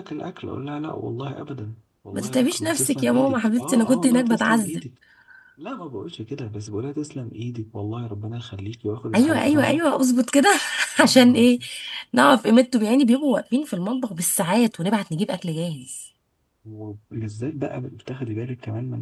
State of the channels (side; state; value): both; identical; correlation 1.00